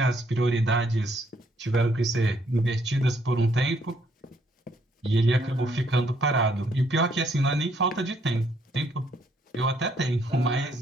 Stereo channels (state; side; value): normal; both; correlation 0.69